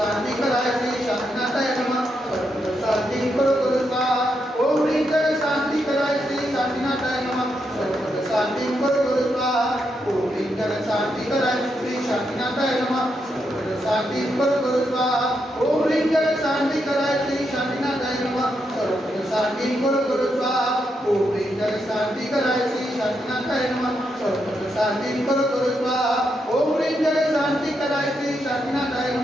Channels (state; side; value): normal; both; correlation 0.82